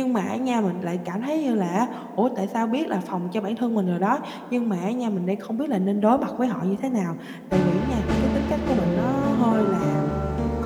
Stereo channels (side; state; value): both; identical; correlation 1.00